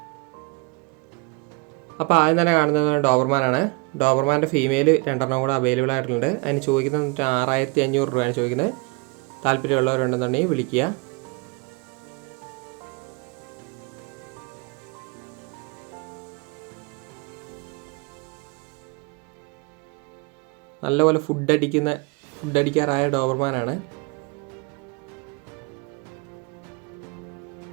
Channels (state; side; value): quieter; left; 29.1 dB